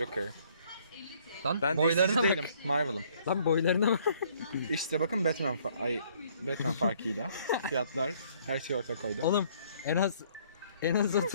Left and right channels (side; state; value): both; inverted; correlation -0.62